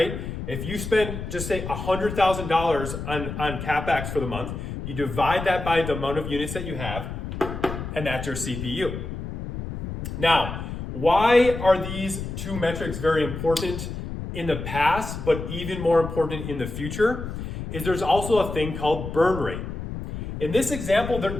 If you spend, just say $100,000 on CapEx for the month, you divide that by the amount of units that you have, and that's your CPU. Now, why are these two metrics very important in the past, but even more important in the future? Is there's also a thing called burn rate. In this example,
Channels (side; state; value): left; noise; rumble, 7 dB below the sound